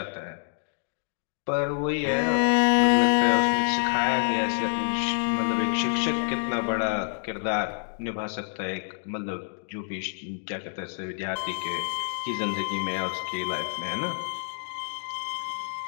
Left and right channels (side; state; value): right; silent; digital silence